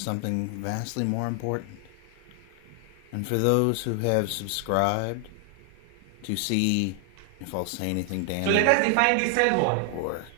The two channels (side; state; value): both; different; correlation 0.00